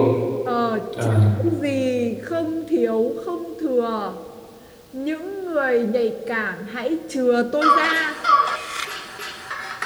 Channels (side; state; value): both; identical; correlation 1.00